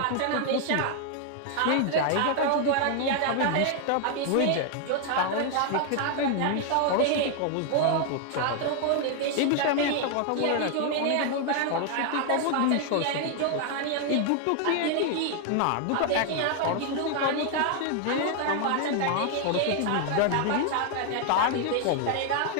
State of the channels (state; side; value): different; both; correlation 0.00